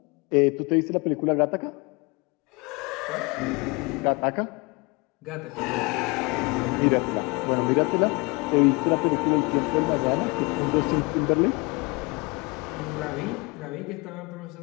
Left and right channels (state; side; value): quieter; right; 27.8 dB